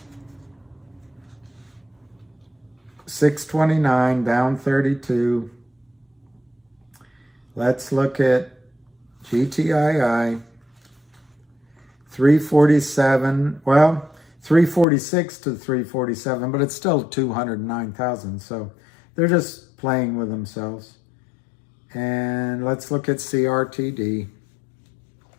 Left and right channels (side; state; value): right; drops out; at 14.9 s